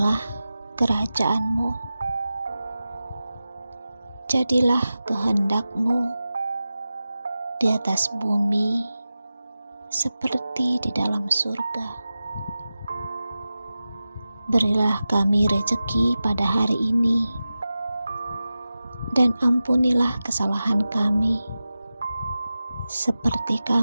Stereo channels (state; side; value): inverted; both; correlation -0.94